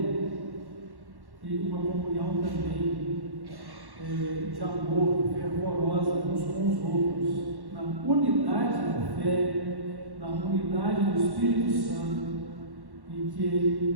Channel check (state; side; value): late; left; 1.1 ms